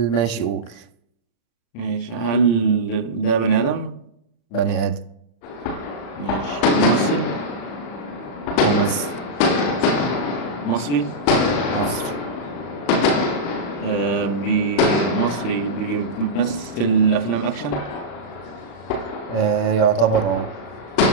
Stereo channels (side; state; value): right; late; 35 ms